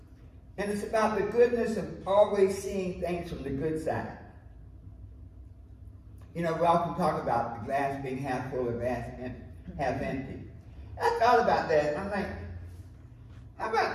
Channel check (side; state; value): both; identical; correlation 1.00